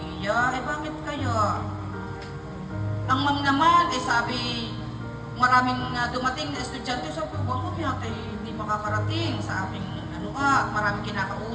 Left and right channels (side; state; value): both; identical; correlation 1.00